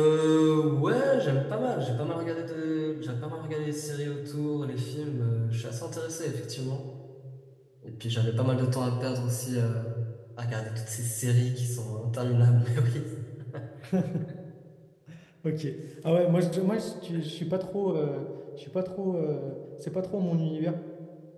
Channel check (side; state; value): both; identical; correlation 1.00